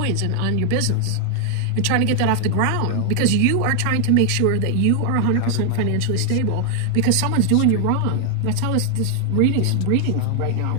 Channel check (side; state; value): both; different; correlation 0.00